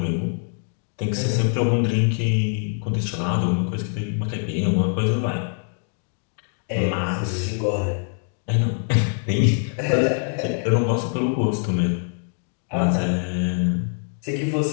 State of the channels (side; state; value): right; silent; 57 dB below the other